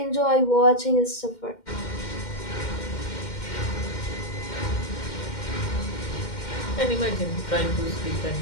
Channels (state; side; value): late; right; 2.1 ms